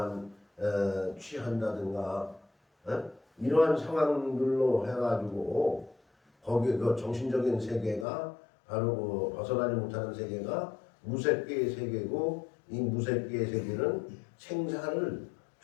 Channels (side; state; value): right; drops out; at 8.1 s